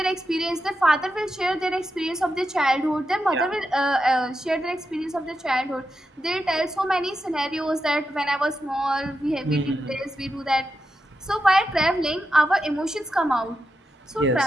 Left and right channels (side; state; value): both; normal; correlation 0.88